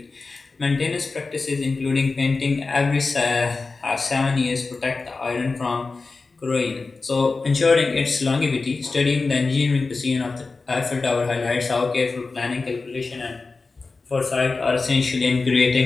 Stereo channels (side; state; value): right; quieter; 4.0 dB